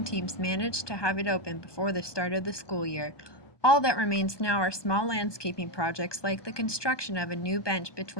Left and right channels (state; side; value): late; right; 1.2 ms